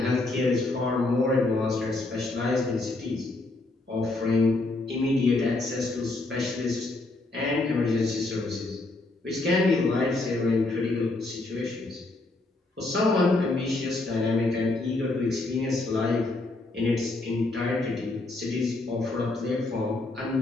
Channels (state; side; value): quieter; right; 3.0 dB